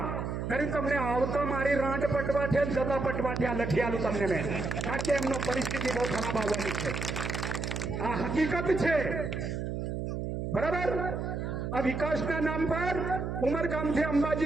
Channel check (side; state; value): right; noise; hum, 3 dB below the sound